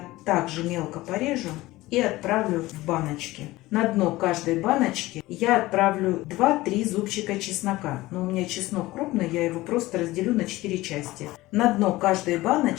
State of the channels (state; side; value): quieter; right; 18.5 dB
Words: также мелко порежу и отправлю в баночки. На дно каждой баночки я отправлю 2-3 зубчика чеснока. Но у меня чеснок крупный, я его просто разделю на 4 части. На дно каждой